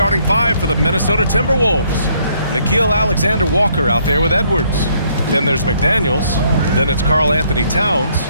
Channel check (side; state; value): both; inverted; correlation -0.68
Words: five for the Minnesota Timberwolves. Nikhil Alexander-Walker out there with Edwards. Then there's McDaniels. Then it's Karl Anthony Towns.